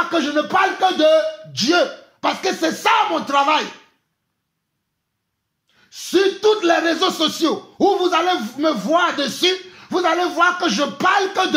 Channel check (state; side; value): identical; both; correlation 1.00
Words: que je ne parle que de Dieu. Parce que c'est ça mon travail. Sur tous les réseaux sociaux où vous allez me voir dessus, vous allez voir que je parle que